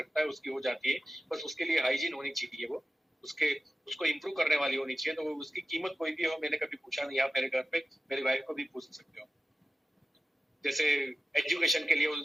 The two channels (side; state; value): both; normal; correlation 0.93